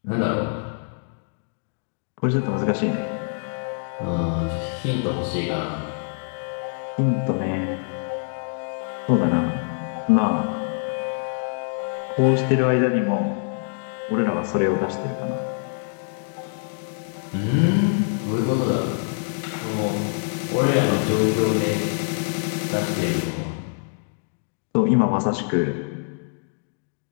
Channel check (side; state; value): right; silent; digital silence